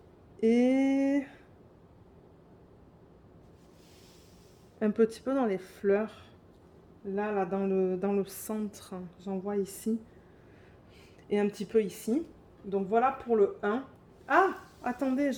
Et un petit peu dans les fleurs. Là, dans le centre, j'en vois ici. Et un petit peu ici. Donc voilà pour le 1. Ah, attendez,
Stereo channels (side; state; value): both; identical; correlation 1.00